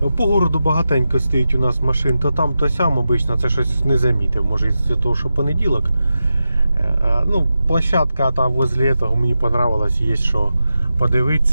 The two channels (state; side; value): inverted; both; correlation -0.90